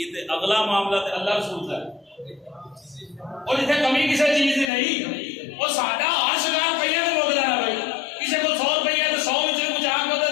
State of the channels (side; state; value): right; drops out; at 4.7 s